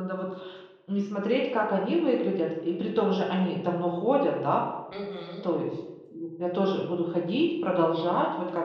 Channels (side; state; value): both; identical; correlation 1.00